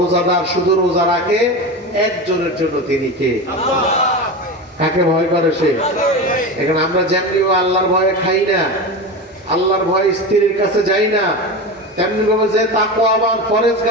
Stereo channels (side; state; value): both; normal; correlation 0.24